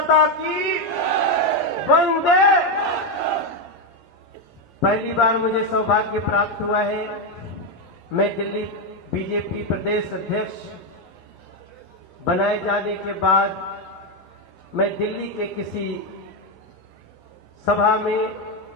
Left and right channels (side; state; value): both; normal; correlation 0.06